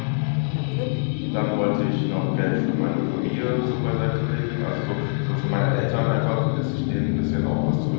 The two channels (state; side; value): silent; right; digital silence